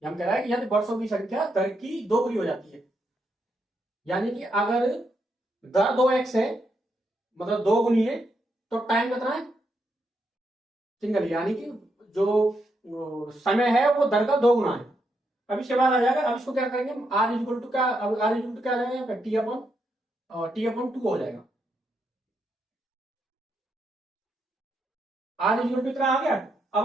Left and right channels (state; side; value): normal; both; correlation 0.80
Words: हम कह रहा है कि यदि वर्षों की संख्या दर की दोगुनी हो जाती है, यानी कि अगर दर 2x है मतलब दो गुनी है, तो टाइम कितना है, सिंगल, यानी कि जो समय है वो दर का 2 गुना है। अब इसके बाद आ जाएगा, अब इसको क्या करेंगे, आर इक्वल टू क्या, अब आर इक्वल टू क्या आ जाएगा यहाँ पे, टी अपॉन 2 हो जाएगा। आर इक्वल टू कितना आ गया।